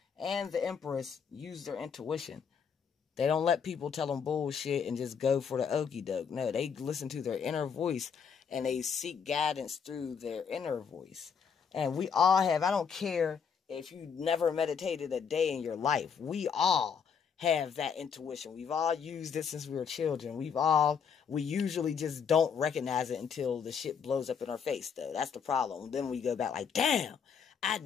and the Empress, use their intuition. They don't let people tell them bullshit and just go for the okie doke. No, they listen to their inner voice and they seek guidance through their inner voice. And we all have, I don't care if you never meditated a day in your life, we all have that intuition. We've all used it since we were children. We usually just don't recognize it until the shit blows up in our face, though. That's the problem. Then we go back like, damn, I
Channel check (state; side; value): quieter; right; 6.7 dB